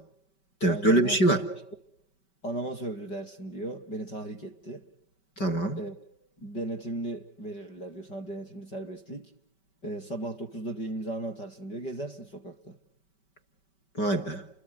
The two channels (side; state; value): right; late; 5.2 ms